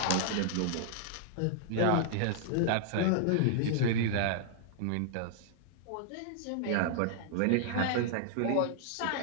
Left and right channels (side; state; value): both; different; correlation -0.01